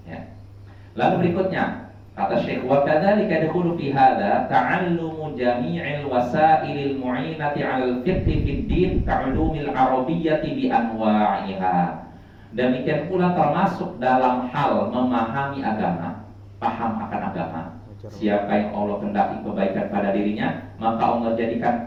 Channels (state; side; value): identical; both; correlation 1.00